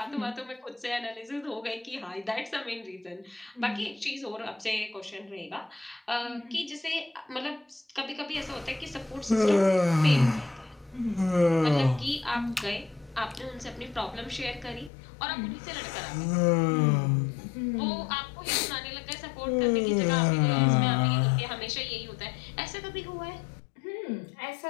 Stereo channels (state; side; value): drops out; right; at 14.9 s